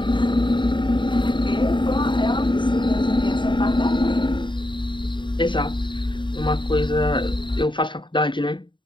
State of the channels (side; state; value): right; late; 0.23 ms